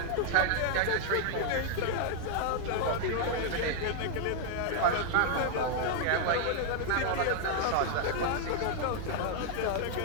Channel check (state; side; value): different; both; correlation 0.00